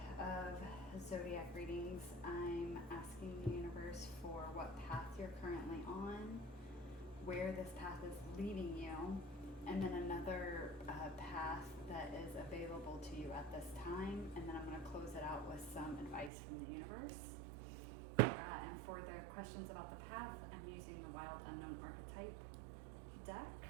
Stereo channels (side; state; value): left; drops out; at 16.3 s